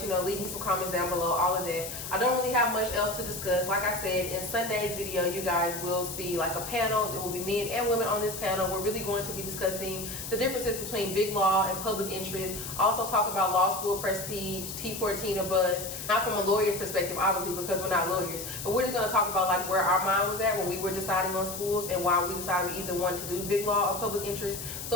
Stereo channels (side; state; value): left; noise; hiss, 8 dB below the sound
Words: you know, leave me some comments down below, all of that. I don't really have much else to discuss. Like I said, in Sunday's video, you guys will see like a panel. There will be men and women on this panel. We're really going to be discussing the differences between big law and public interest. Also talk about law school prestige, T14 or bust. Not from a lawyer's perspective, obviously, because we're not lawyers. But we're just going to talk about like where our mind was at when we were deciding on schools and why we decided we either wanted to do big law or public interest.